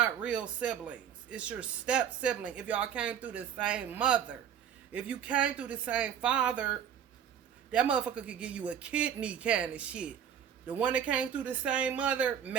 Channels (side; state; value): left; quieter; 8.7 dB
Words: real siblings. It's your step sibling if y'all came through the same mother. If you came through the same father, that motherfucker could give you a kidney kind of shit. The one that came through the same mother,